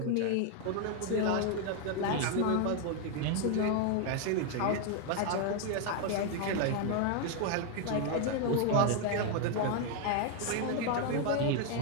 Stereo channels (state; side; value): different; both; correlation 0.01